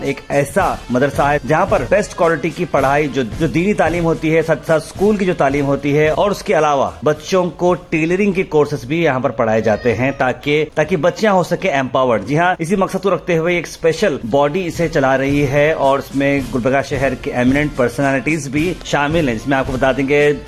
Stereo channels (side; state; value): both; identical; correlation 1.00